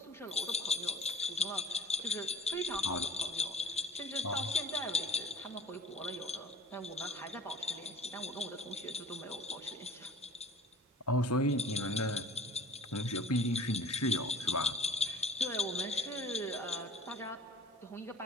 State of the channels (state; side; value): normal; both; correlation 0.46